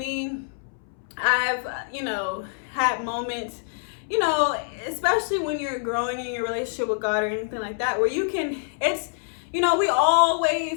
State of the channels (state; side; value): silent; right; 61 dB below the other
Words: I've, had moments, especially when you're growing in your relationship with God or anything like that, where we